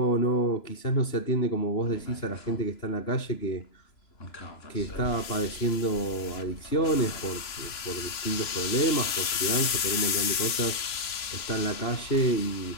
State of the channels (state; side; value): late; right; 3.0 ms